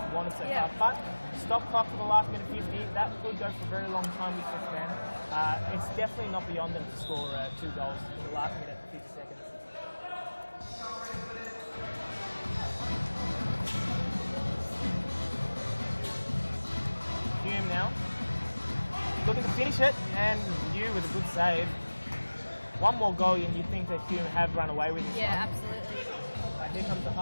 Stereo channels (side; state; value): both; inverted; correlation -1.00